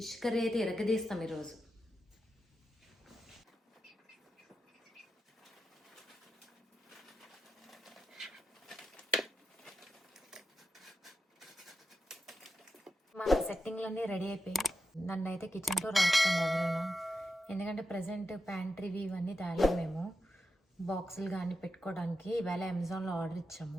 కర్రీ అయితే ఇరగదీస్తాం ఈరోజు. మన సెట్టింగ్లన్నీ రెడీ అయిపోయి నన్ను అయితే కిచెన్లో రాసుకోండి ఎవరైనా, ఎందుకంటే ప్రజెంట్ ప్యాంట్రీవి ఇవన్నీ తేలేము మేము. బాక్సులు కానీ పెట్టుకోవడానికి ఇవాళ అమెజాన్లో ఆర్డర్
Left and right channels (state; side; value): normal; both; correlation 0.88